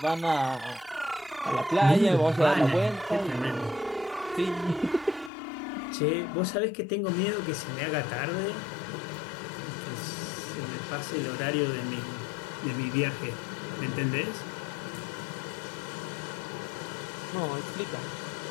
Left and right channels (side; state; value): right; drops out; at 5.3 s